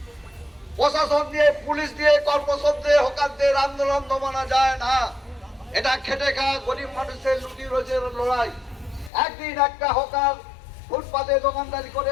প্রশাসন দিয়ে পুলিশ দিয়ে কর্পোরেশন দিয়ে হকারদের আন্দোলন দমানো যায় না। এটা খেটে খাওয়া গরিব মানুষের লুটি রোজের লড়াই। একদিন একটা হকার ফুটপাতে দোকানদারি করে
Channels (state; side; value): drops out; right; at 9.1 s